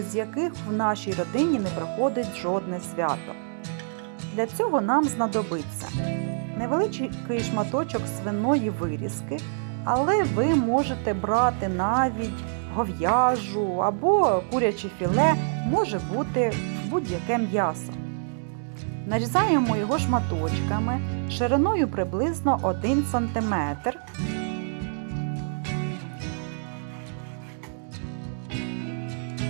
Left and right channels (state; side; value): silent; left; digital silence